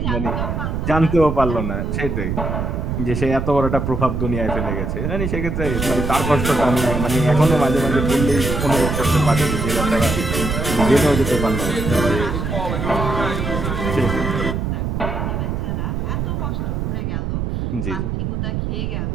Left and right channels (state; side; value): noise; right; rumble, 2 dB below the sound